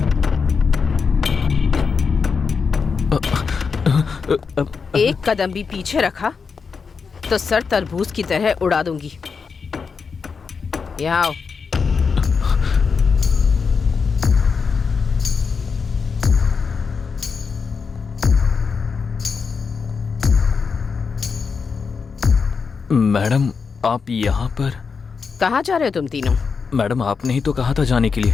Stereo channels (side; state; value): right; quieter; 5.4 dB